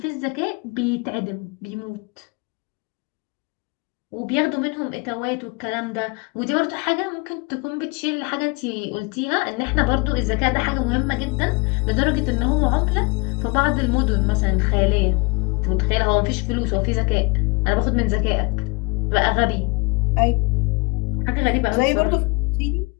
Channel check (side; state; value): right; quieter; 28.3 dB